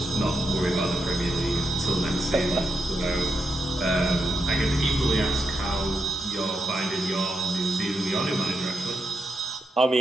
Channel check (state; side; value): normal; both; correlation 0.84